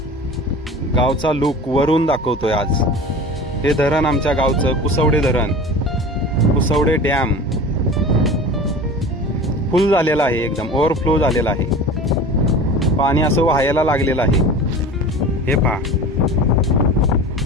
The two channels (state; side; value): normal; both; correlation 0.36